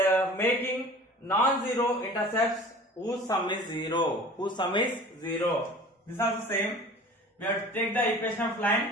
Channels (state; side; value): normal; both; correlation 0.43